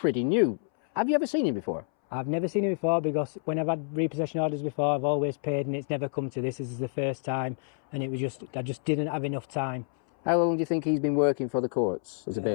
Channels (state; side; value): silent; right; 59 dB below the other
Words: new. Have you ever seen him before? I've never seen him before, because when I've had repossession orders before, I've always paid and it's never come to this. This is the first time, and I just didn't have enough time. How long do you think he's been working for the courts as a